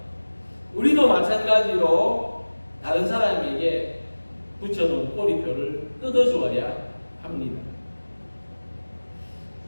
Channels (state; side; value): inverted; both; correlation -1.00